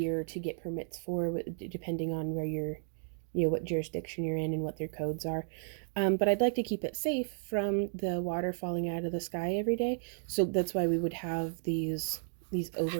to get permits for, depending on where you're, what jurisdiction you're in and what their codes are. But I'd like to keep it safe from the water falling out of the sky every day. So that's why we would have these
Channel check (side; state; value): left; silent; digital silence